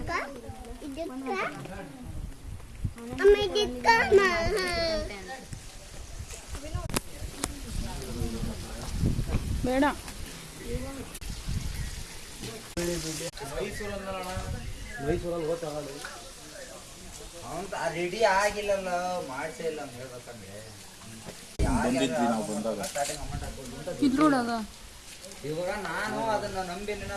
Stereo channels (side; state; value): both; identical; correlation 1.00